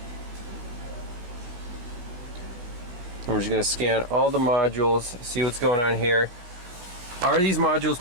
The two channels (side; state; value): left; late; 17 ms